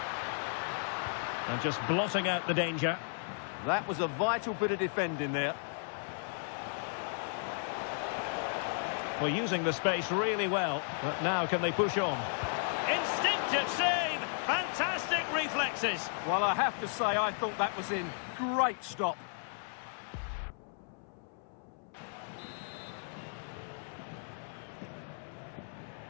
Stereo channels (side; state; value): right; silent; 55 dB below the other